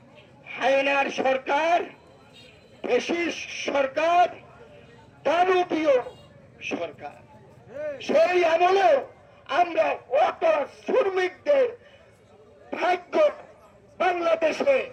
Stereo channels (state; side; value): identical; both; correlation 1.00